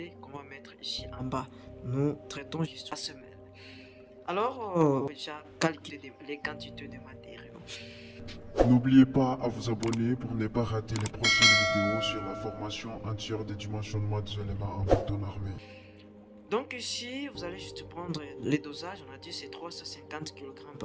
qu'on va mettre ici en bas. Nous traitons juste la semelle. Alors, déjà calculer les quantités de matériaux. N'oubliez pas à vous abonner pour ne pas rater les prochaines vidéos sur la formation entière des dimensionnements des éléments en béton armé. Donc ici, vous allez juste prendre les dosages. On a dit c'est 350 kg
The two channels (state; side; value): identical; both; correlation 1.00